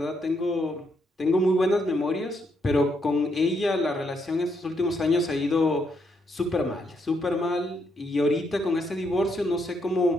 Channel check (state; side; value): normal; both; correlation 0.77